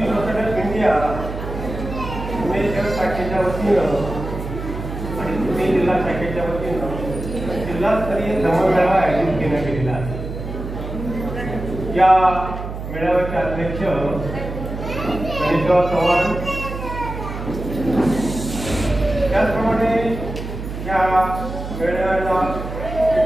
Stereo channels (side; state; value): right; noise; hum, 7 dB below the sound